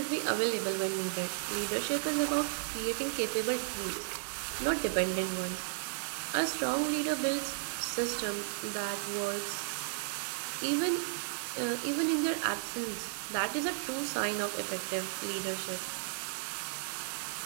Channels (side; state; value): left; silent; digital silence